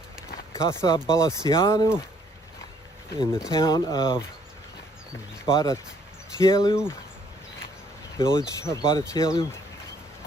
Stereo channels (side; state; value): both; normal; correlation 0.65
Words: Bradetelu in the town of Bradetelu, village of Bradetelu.